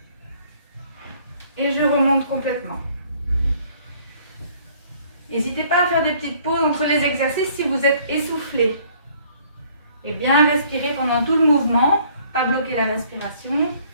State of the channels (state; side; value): inverted; both; correlation -0.59